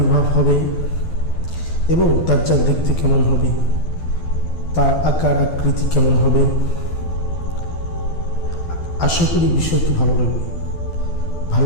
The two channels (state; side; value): late; right; 12 ms